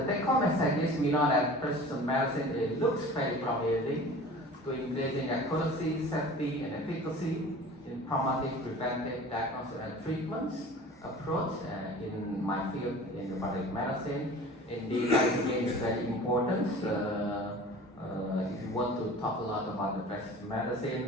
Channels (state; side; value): normal; both; correlation 0.41